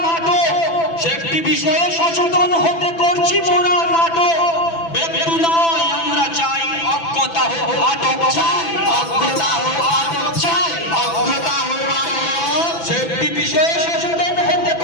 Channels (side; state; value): right; late; 6.0 ms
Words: নাটক, সেফটি বিষয়ে সচেতন হতে করছি মোরা নাটক। ব্যক্তি নয় আমরা চাই অজ্ঞতা হোক আটক।